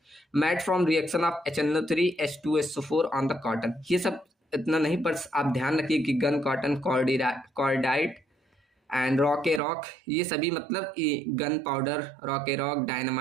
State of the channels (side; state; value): left; drops out; at 9.6 s